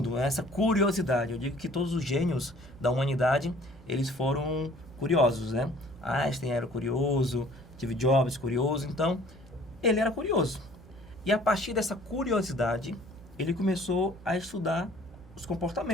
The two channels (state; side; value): normal; both; correlation 0.53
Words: essa curiosidade. Eu digo que todos os gênios da humanidade, eles foram curiosos, né? Einstein era curioso, Steve Jobs curioso, então ele era curioso. E a partir dessa curiosidade, ele começou a estudar os